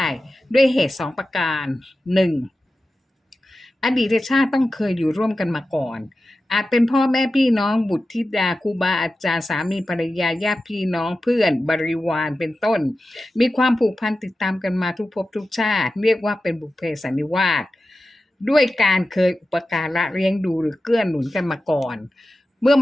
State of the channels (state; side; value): normal; both; correlation 0.93